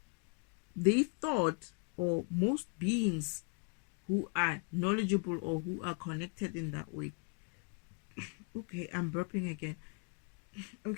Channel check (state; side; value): quieter; right; 34.5 dB